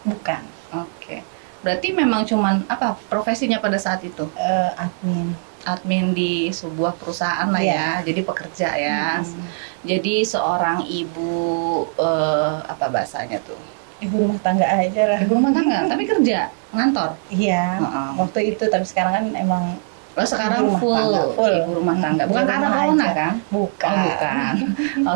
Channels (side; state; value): left; silent; digital silence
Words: Bukan. Oke. Berarti memang cuman apa profesinya pada saat itu? Admin di sebuah perusahaan lah ya, jadi pekerja ya. Jadi seorang ibu apa bahasanya tuh? Ibu rumah tangga aja lah. Ibu rumah tangga, tapi kerja ngantor. Iya. Waktu itu, tapi sekarang kan emang Sekarang Ibu rumah full tangga, full. ibu rumah tangga. Bukan Ibu karena rumah corona aja. kan? bukan. Oh, bukan.